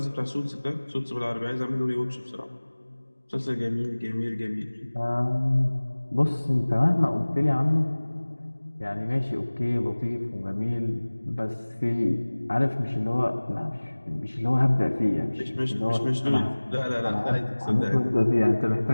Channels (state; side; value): inverted; both; correlation -1.00